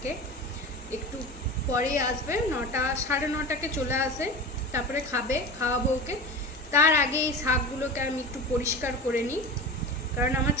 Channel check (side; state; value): both; normal; correlation 0.29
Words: একটু পরেই আসবে, 9টা 9:30কে চলে আসে, তারপরে খাওয়াবো ওকে। তার আগে এই শাকগুলোকে আমি একটু পরিষ্কার করে নিই, কারণ আমার